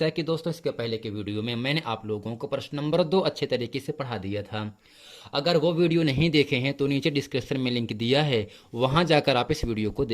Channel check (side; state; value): both; identical; correlation 1.00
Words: कि दोस्तों इसके पहले के वीडियो में मैंने आप लोगों को प्रश्न नंबर 2 अच्छे तरीके से पढ़ा दिया था। अगर वो वीडियो नहीं देखे हैं तो नीचे डिस्क्रिप्शन में लिंक दिया है, वहां जाकर आप इस वीडियो को